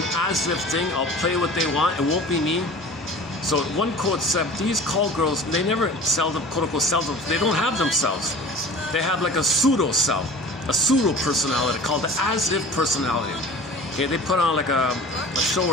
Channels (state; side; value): normal; both; correlation 0.40